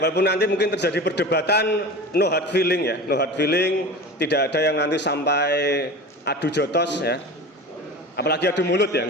nanti mungkin terjadi perdebatan, no hard feeling ya, no hard feeling. Tidak ada yang nanti sampai adu jotos ya. Apalagi adu mulut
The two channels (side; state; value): both; normal; correlation 0.33